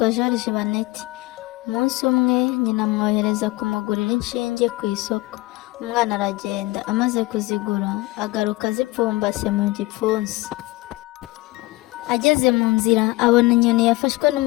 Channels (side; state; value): right; quieter; 20.8 dB